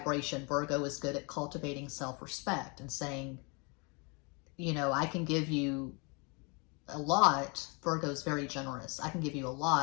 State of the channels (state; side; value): quieter; right; 31.8 dB